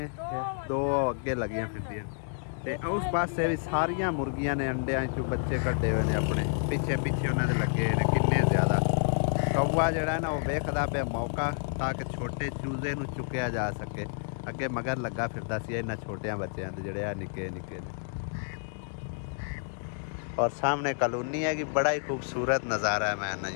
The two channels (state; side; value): silent; right; 58 dB below the other